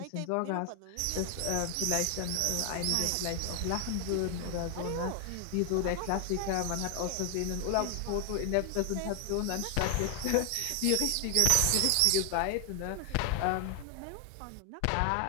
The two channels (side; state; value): both; different; correlation 0.00